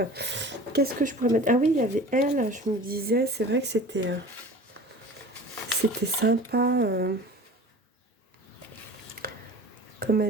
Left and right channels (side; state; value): both; normal; correlation 0.39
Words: Qu'est-ce que je pourrais mettre? Ah oui, il y avait elle. Je me disais, c'est vrai que c'était sympa. Comme